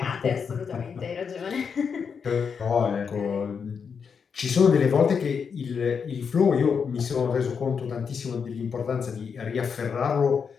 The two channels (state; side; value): quieter; right; 6.3 dB